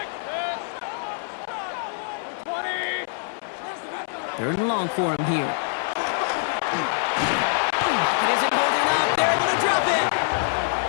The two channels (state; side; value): silent; right; 62 dB below the other